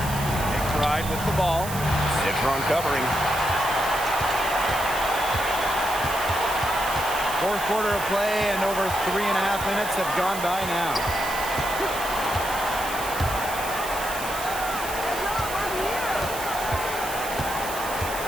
McBride with the ball. Citron covering. Fourth quarter of play and over 3.5 minutes have gone by now.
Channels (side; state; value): right; noise; hiss, 9 dB below the sound